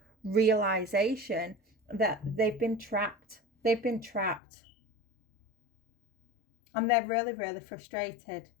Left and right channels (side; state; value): right; drops out; at 4.4 s